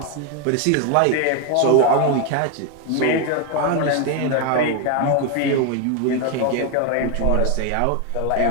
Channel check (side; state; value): both; different; correlation 0.01